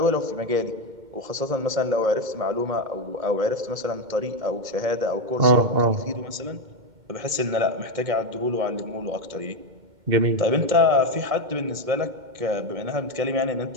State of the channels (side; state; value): left; late; 2.1 ms